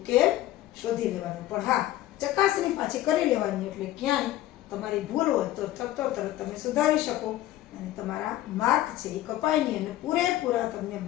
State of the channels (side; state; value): right; quieter; 14.6 dB